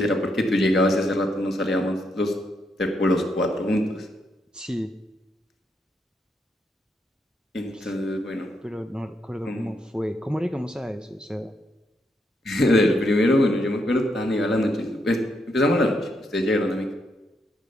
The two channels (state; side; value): normal; both; correlation 0.79